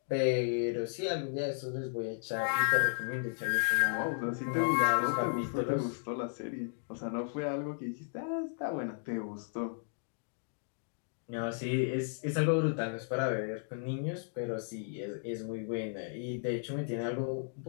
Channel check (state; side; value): silent; right; digital silence